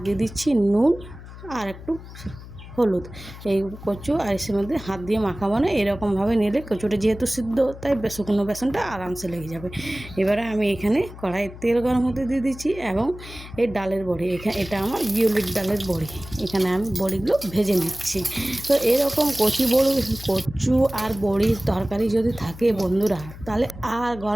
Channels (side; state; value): left; noise; hum, 15 dB below the sound